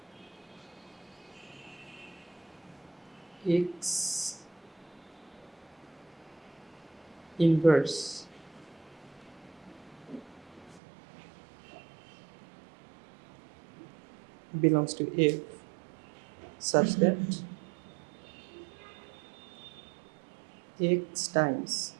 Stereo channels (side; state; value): left; drops out; at 10.8 s